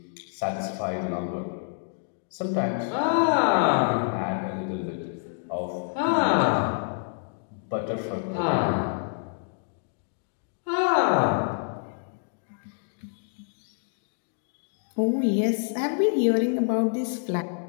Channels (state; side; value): silent; right; 58 dB below the other